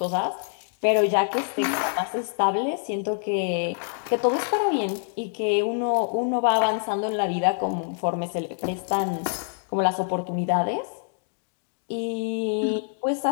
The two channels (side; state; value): right; silent; digital silence